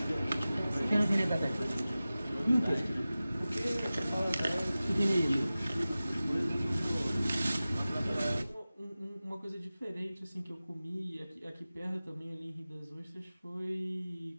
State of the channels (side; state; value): both; inverted; correlation -0.96